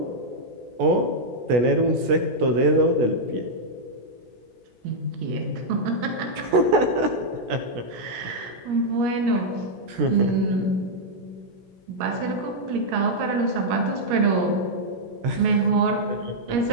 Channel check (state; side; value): late; left; 16 ms